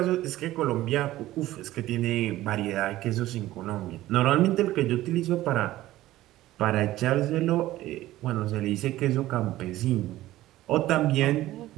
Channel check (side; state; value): left; quieter; 15.6 dB